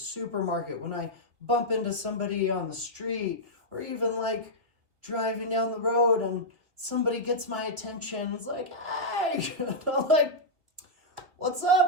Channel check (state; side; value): late; left; 2.6 ms